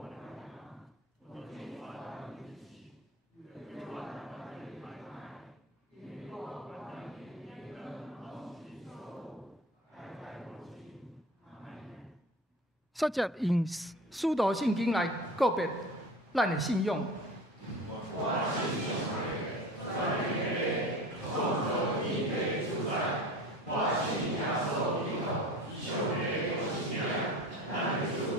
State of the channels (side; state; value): both; normal; correlation 0.36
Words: 率接用使徒圣经来告别咱的信仰。